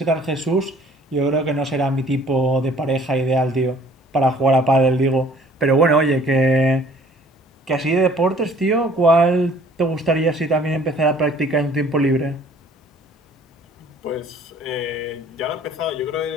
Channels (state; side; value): normal; both; correlation 0.55